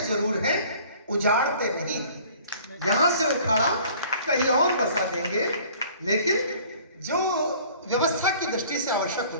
जरूर हैं, उजाड़ते नहीं। यहां से उखाड़ा कहीं और बसा देंगे, लेकिन जो व्यवस्था की दृष्टि से आवश्यक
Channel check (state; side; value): inverted; both; correlation -0.51